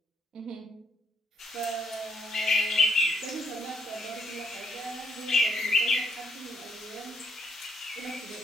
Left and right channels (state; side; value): normal; both; correlation 0.72